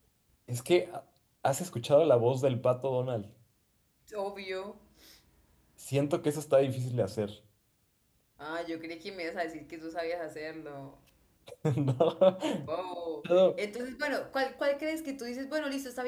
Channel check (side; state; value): both; identical; correlation 1.00